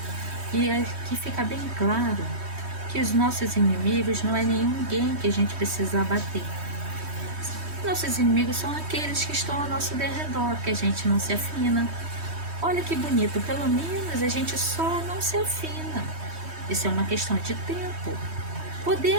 E aqui fica bem claro que os nossos inimigos não é ninguém que a gente precisa abater. Nossos inimigos são aqueles que estão ao nosso derredor, que a gente não se afina. Olha que bonito, pelo menos a gente só não se afina. Isso é uma questão de tempo.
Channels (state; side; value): late; left; 3.2 ms